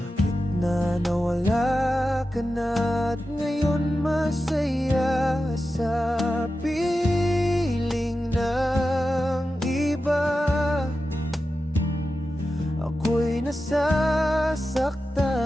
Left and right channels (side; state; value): both; normal; correlation 0.92